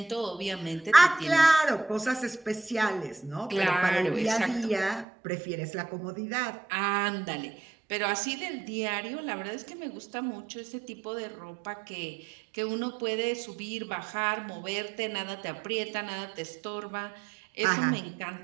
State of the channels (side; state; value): left; drops out; at 5.1 s